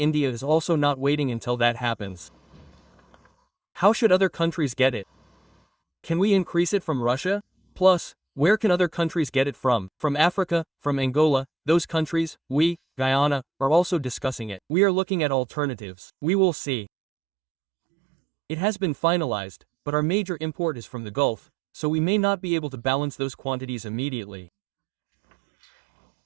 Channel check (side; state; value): left; drops out; at 14.6 s